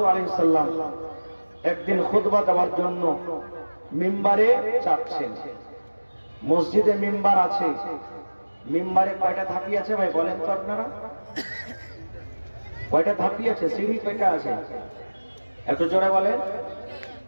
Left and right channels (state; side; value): inverted; both; correlation -1.00